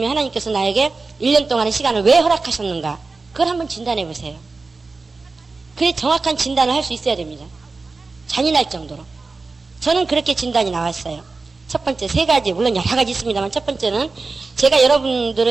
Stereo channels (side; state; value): left; quieter; 3.9 dB